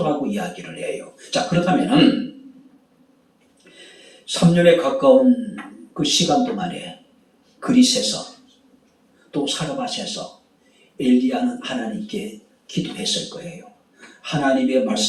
이야기를 해요. 자, 그렇다면 3년에 가까운 그 시간 동안에 그릿에서 또 사르밧에서 엘리야는 하나님께 기도했을 거예요. 하나님의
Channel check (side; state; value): both; identical; correlation 1.00